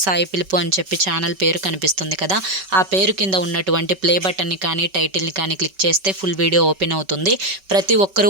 @సాయి పిలుపు అని చెప్పి ఛానల్ పేరు కనిపిస్తుంది కదా, ఆ పేరు కింద ఉన్నటువంటి ప్లే బటన్ని కానీ టైటిల్ని కానీ క్లిక్ చేస్తే ఫుల్ వీడియో ఓపెన్ అవుతుంది. ప్రతి ఒక్కరూ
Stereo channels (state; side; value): late; left; 5.2 ms